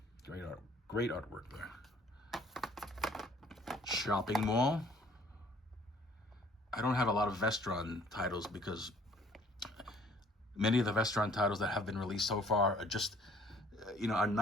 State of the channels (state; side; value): normal; both; correlation 0.57